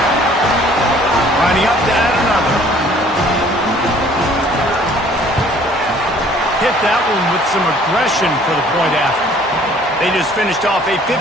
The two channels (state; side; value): normal; both; correlation 0.56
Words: Lining up to add another. Hit that one with some aggression for the point after. They just finished off a